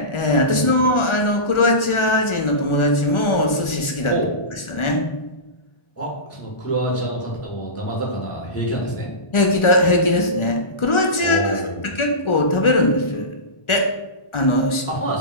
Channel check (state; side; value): late; right; 1.4 ms